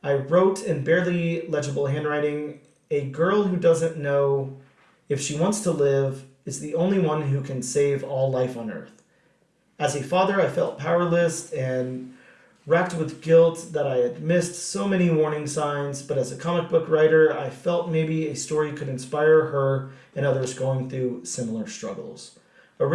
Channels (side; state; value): both; identical; correlation 1.00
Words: I wrote in barely legible handwriting, a girl who doesn't know if she wants to live is the only one who can save all life on earth. As a father, I felt powerless and racked with guilt that I had missed so many warning signs, but as a comic book writer, I felt maybe a story could inspire her and others going through similar struggles.